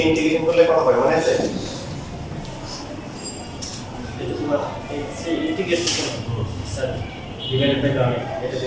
ইন্টিগ্রেশন করলে কত হয় মনে আছে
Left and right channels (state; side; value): identical; both; correlation 1.00